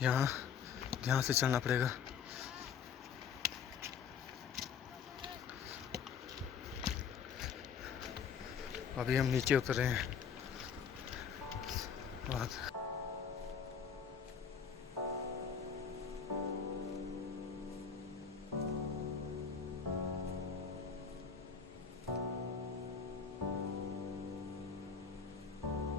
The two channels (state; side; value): quieter; right; 6.8 dB